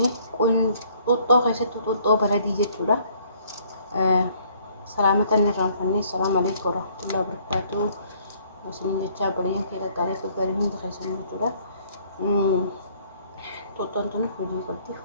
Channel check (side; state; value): both; inverted; correlation -0.62